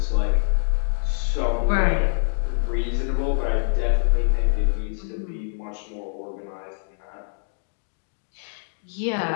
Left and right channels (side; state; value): right; silent; digital silence